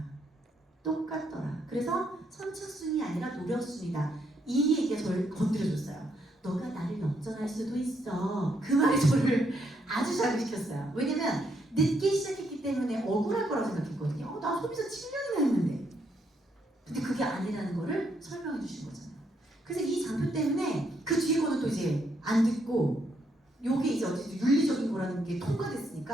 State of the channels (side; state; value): both; normal; correlation 0.75